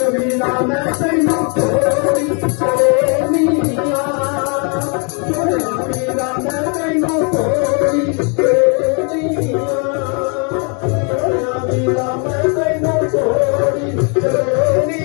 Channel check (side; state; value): right; quieter; 37.0 dB